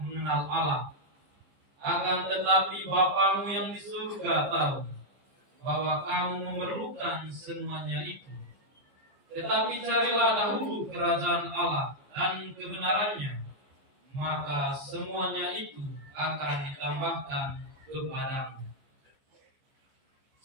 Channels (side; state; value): left; late; 15 ms